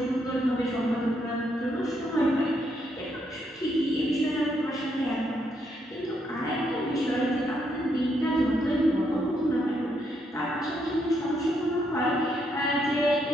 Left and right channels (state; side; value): normal; both; correlation 0.76